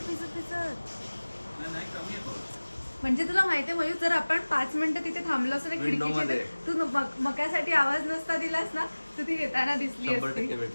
भिजत? म्हणजे तुला माहितीये मयूर, जर आपण 5 मिनिटं तिथे थांबलो असतो ना खिडकीच्या, तू मक्यासाठी आवाज नसता दिलास ना, तू ती येताना दिसली असती.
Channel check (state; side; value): inverted; both; correlation -1.00